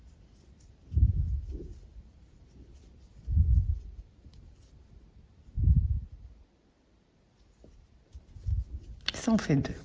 Ça en fait 2.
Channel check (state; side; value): identical; both; correlation 1.00